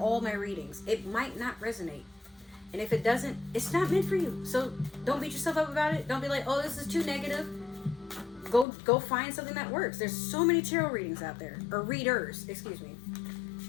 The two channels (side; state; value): right; drops out; at 8.7 s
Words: my readings, it might not resonate. And if it doesn't, it's not meant for you. So don't beat yourself up about it. Don't be like, oh, this is too negative. Go find something that works. There's so many tarot readings out there, or readers, excuse me.